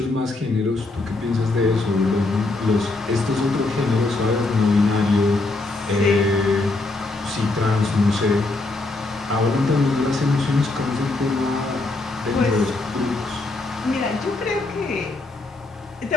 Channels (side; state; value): right; quieter; 3.2 dB